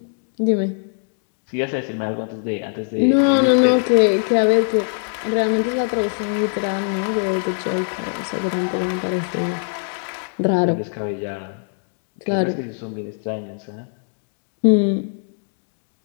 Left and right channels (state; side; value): silent; right; digital silence